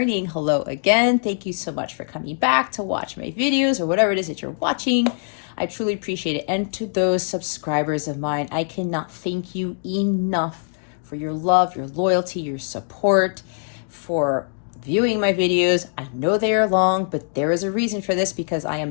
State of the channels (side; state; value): right; silent; digital silence